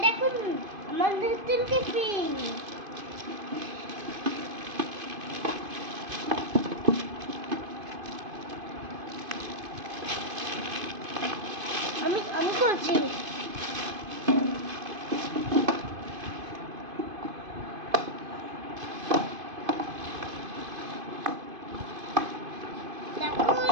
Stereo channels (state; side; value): late; left; 2.5 ms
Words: দেখুন আমার নতুন টিফিন। আমি করছি।